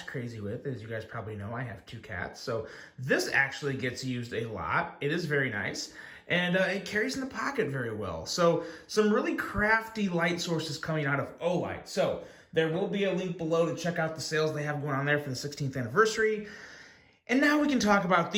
crazy with. As you guys probably know, I have two cats. So this actually gets used a lot. It is very nice. And it carries in the pocket very well. So some really crafty light sources coming out of O-Lite. So there will be a link below to check out the sales they have going on there for the 16th anniversary. And now we can talk about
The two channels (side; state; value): both; identical; correlation 1.00